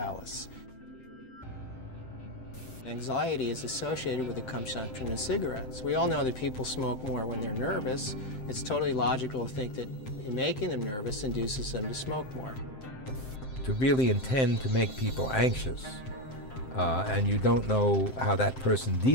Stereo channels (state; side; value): late; right; 7.7 ms